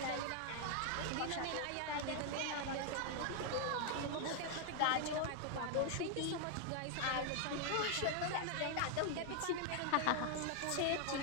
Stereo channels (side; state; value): both; different; correlation 0.00